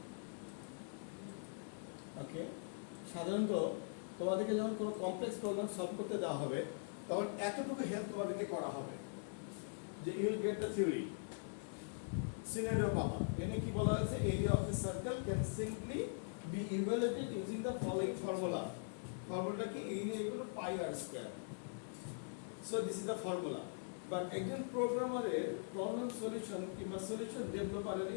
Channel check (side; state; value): right; silent; digital silence